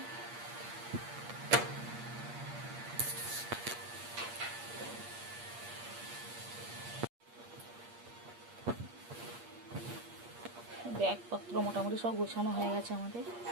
ব্যাগপত্র মোটামুটি সব গোছানো হয়ে গেছে আমাদের।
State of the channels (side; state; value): left; late; 8.5 ms